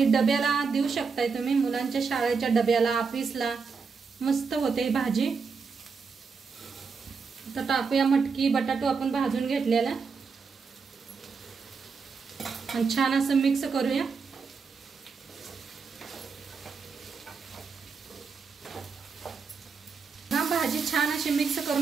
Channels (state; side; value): quieter; left; 5.2 dB